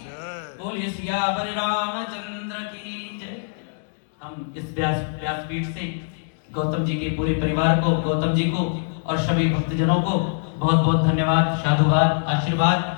बोलिए सियावर रामचंद्र की जय। हम इस व्यासपीठ से गौतम जी के पूरे परिवार को, गौतम जी को और सभी भक्तजनों को बहुत बहुत धन्यवाद, साधुवाद, आशीर्वाद।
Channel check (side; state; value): right; silent; digital silence